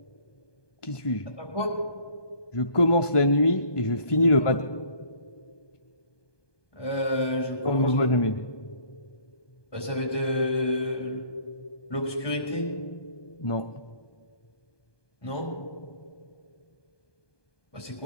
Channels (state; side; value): late; right; 1.2 ms